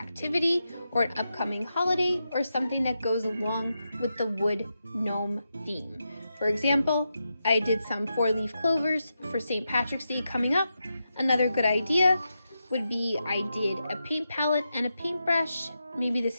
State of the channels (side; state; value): both; inverted; correlation -0.87